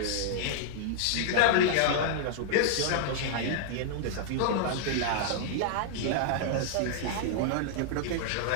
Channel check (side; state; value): both; different; correlation -0.01